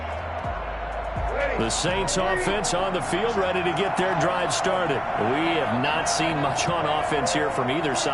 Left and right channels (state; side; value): identical; both; correlation 1.00